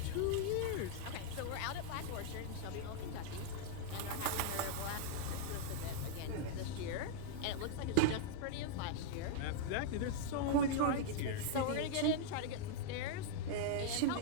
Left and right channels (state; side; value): different; both; correlation -0.01